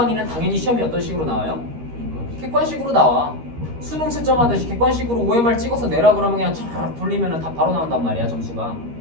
당연히 시험이 어떤 식으로 나와요? 객관식으로 나와. 수능 채점하듯이 객관식으로 OMR 찍어서 내라 그러면 그냥 촤르륵 돌리면 다 바로 나온단 말이야, 점수가.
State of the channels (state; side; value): late; left; 13 ms